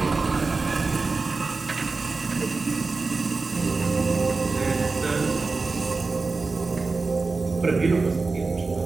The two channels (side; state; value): left; quieter; 4.0 dB